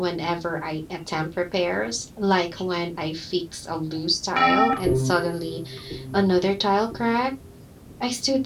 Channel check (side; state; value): both; identical; correlation 1.00